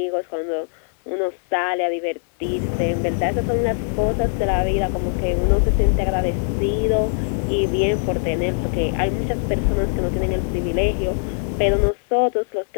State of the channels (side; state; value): right; silent; digital silence